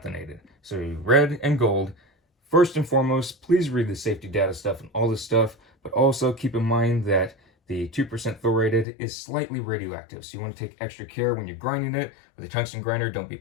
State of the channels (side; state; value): right; drops out; at 8.8 s